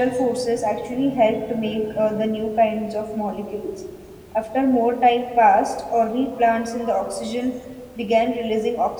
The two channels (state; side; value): identical; both; correlation 1.00